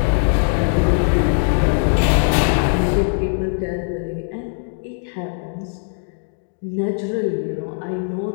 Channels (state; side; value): silent; right; 59 dB below the other